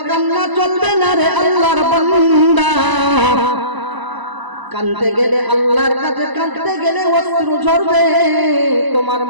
কান্না চলবে না রে আল্লাহর বান্দা। কাঁদতে গেলে আল্লাহর কাছে কাঁদতে গেলে অশ্রু ঝরবে, তোমার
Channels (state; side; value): late; left; 1.0 ms